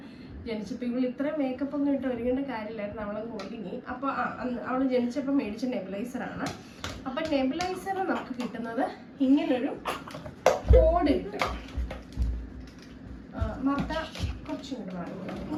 ജനിച്ചപ്പോൾ ഇവൾ ഇത്ര മേക്കപ്പ് ഒന്നും ഇട്ട് ഒരുങ്ങേണ്ട കാര്യമില്ലായിരുന്നു, അവളങ്ങ് ഒരുങ്ങി. അപ്പോൾ അവൾ ജനിച്ചപ്പോൾ മേടിച്ച നെബുലൈസറാണ്. അപ്പം നെബുലൈസർ നമുക്ക് കിട്ടുന്നത് ഇങ്ങനൊരു കോഡ് കിട്ടും. മർത്ത കുറച്ചും കൂടെ വാങ്ങുന്നത്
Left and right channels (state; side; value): identical; both; correlation 1.00